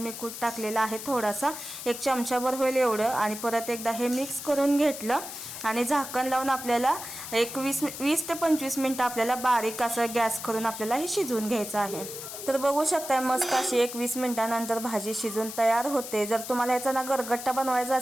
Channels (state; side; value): noise; left; hiss, 9 dB below the sound